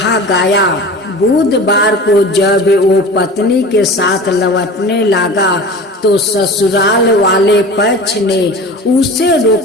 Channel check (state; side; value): normal; both; correlation 0.36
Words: गया, बुधवार को जब वो पत्नी के साथ लौटने लगा तो ससुराल वाले पक्ष ने उसे